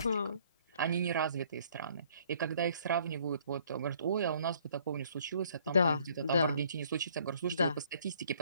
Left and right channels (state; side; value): inverted; both; correlation -0.61